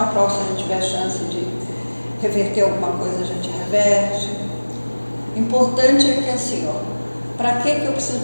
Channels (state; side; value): inverted; both; correlation -1.00